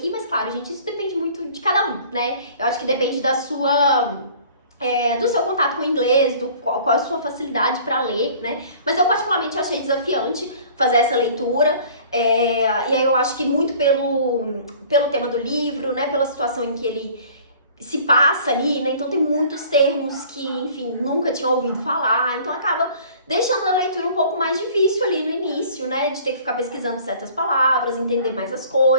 mas claro, gente, isso depende muito de cada um, né? Eu acho que depende da sua... do seu contato com o inglês, qual a sua facilidade para ler, né? Mas eu particularmente achei desafiante fazer essa leitura, e aí eu acho que muito pelo tema do livro, né? Pela situação em que ele se passa ali, né? Então tem muitos termos que, enfim, nunca tinha ouvido falar, então acaba deixando a leitura um pouco mais difícil ali no início, né? De ter que ficar pesquisando certas palavras, entender mais as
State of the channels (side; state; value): both; inverted; correlation -0.50